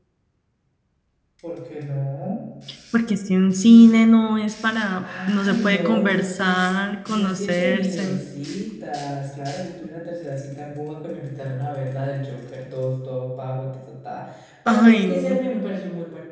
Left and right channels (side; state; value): both; identical; correlation 1.00